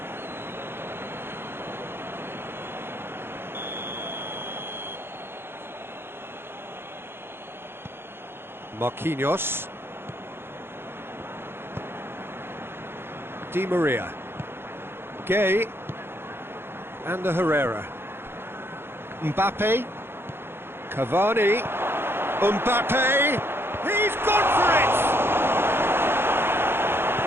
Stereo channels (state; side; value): late; left; 0.11 ms